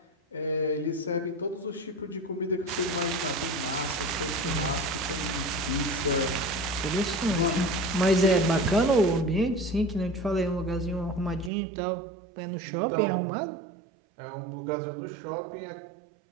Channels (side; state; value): left; drops out; at 11.5 s